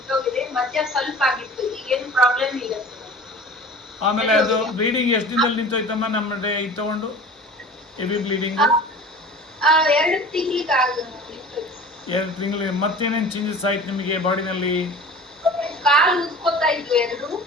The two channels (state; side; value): normal; both; correlation 0.40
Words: ಮಧ್ಯ ಸ್ವಲ್ಪ ಆಗಿತ್ತು, ಈಗೇನು ಪ್ರಾಬ್ಲಮ್ ಇಲ್ಲ. ಆಮೇಲೆ ಅದು ಬ್ಲೀಡಿಂಗ್ ಎಷ್ಟು ದಿನದಲ್ಲಿ ನಿಂತೋಯ್ತಮ್ಮ? ನಮ್ಮ ಇದು ತಗೊಂಡು ಹೆವಿ ಬ್ಲೀಡಿಂಗು 2 ತಿಂಗಳಿಗೆ ನಿಂತೋಯ್ತು. 2 ತಿಂಗಳು. ಮತ್ತೇನೇನು ಚೇಂಜಸ್ ಆಯ್ತು ನಿಮಗೆ ಬಾಡಿನಲ್ಲಿ? ಕಾಲು ಉದ್ಕೋತಾ ಇದ್ವು 2,